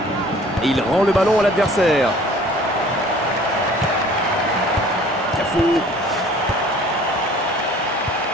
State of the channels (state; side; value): normal; both; correlation 0.51